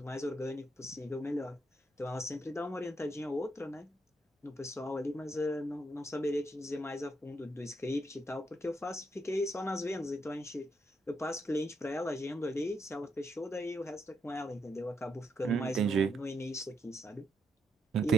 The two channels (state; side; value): normal; both; correlation 0.78